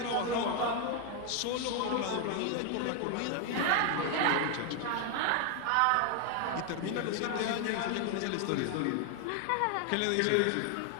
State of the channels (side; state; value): both; different; correlation 0.01